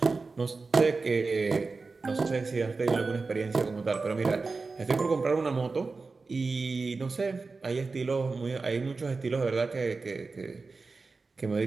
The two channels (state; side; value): quieter; left; 4.1 dB